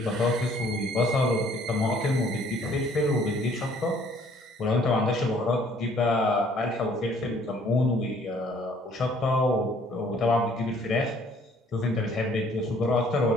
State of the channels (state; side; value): normal; both; correlation 0.59